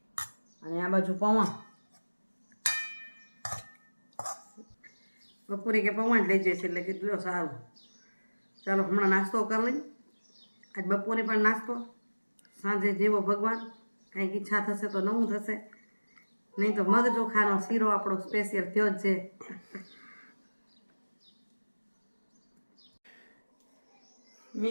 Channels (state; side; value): inverted; both; correlation -1.00